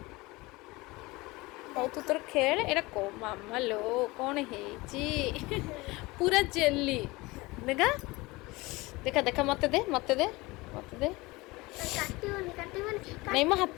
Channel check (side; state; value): right; quieter; 22.3 dB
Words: हौ तू तोर खेल एटा को मामा लो कौन है पूरा जेली देखा देखा देखा मत दे मत दे मत दे नहीं मो